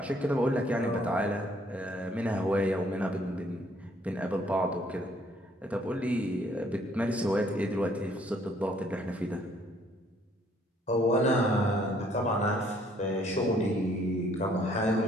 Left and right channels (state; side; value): normal; both; correlation 0.64